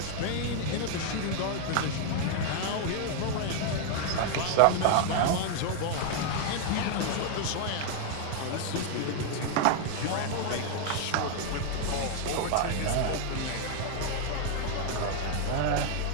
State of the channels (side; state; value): both; different; correlation 0.00